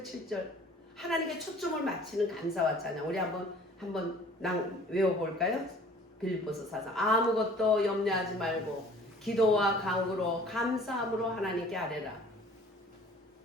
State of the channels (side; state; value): both; normal; correlation 0.50